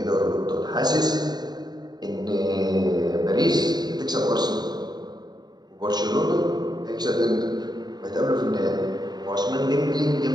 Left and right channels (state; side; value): late; left; 0.20 ms